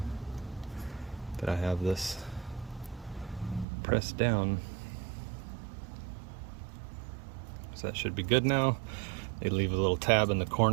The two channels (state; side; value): drops out; left; at 3.7 s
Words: that I have this pressed down. So that should be good now. They leave a little tab in the